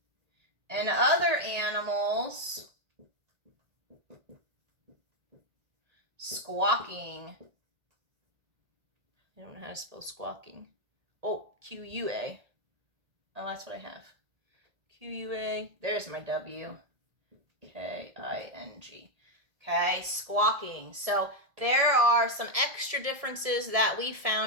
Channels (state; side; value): late; left; 1.7 ms